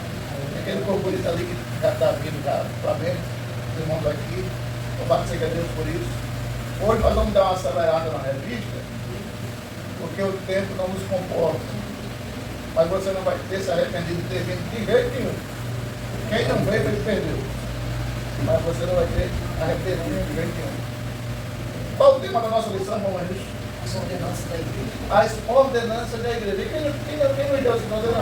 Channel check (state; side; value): identical; both; correlation 1.00